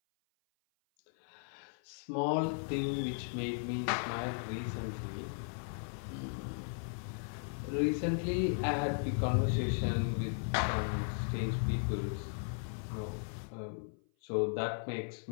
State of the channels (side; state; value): right; silent; 53 dB below the other